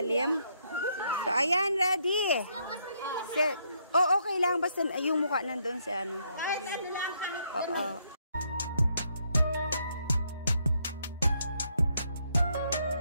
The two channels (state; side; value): inverted; both; correlation -0.74